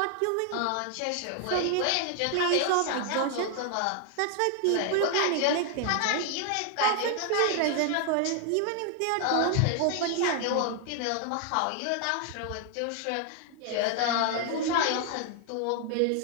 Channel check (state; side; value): different; both; correlation 0.00